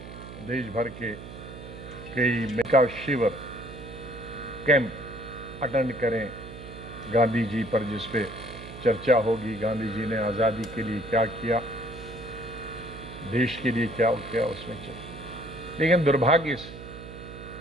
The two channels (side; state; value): right; noise; hum, 13 dB below the sound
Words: देश भर के कई मेका शिविर कैंप अटेंड करें गांधी जी पर, जिस पे चर्चा होगी गांधी जी ने आज़ादी के लिए क्या किया। देश के लिए क्या क्या उसमें चले। लेकिन दुर्भाग्य से